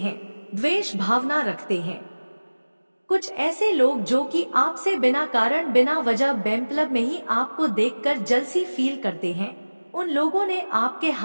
द्वेष भावना रखते हैं, कुछ ऐसे लोग जो कि आपसे बिना कारण बिना वजह बेमतलब में ही आपको देखकर जलसी फील करते हैं, उन लोगों ने आपके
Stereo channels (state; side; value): inverted; both; correlation -1.00